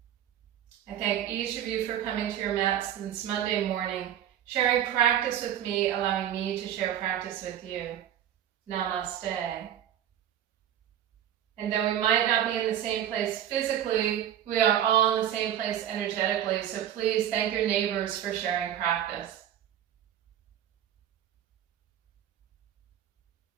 I thank each of you for coming to your mats this Monday morning, sharing practice with me, allowing me to share practice with you. Namaste. And though we might not be in the same place physically, we are all in the same place energetically, so please thank your neighbors for sharing practice.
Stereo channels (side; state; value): left; quieter; 10.6 dB